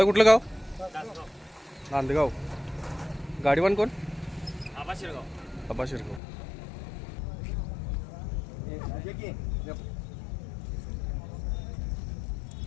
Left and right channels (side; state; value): right; drops out; at 6.2 s